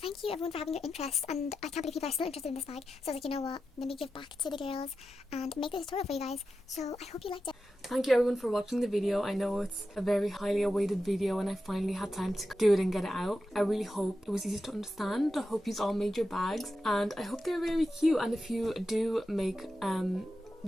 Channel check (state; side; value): normal; both; correlation 0.90